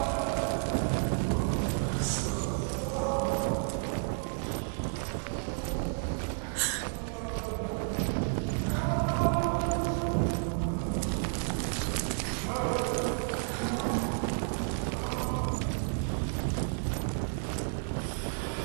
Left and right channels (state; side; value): silent; left; 57 dB below the other